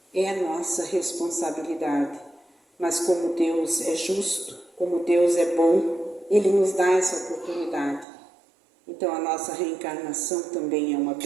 É a nossa responsabilidade. Mas como Deus é justo, como Deus é bom, Ele nos dá essa oportunidade. Então a nossa reencarnação também é uma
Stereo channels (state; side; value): drops out; left; at 8.1 s